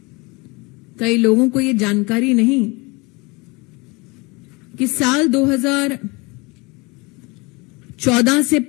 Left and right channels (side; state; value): right; quieter; 26.6 dB